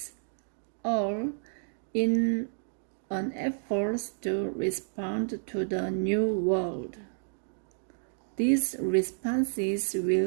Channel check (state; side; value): silent; left; digital silence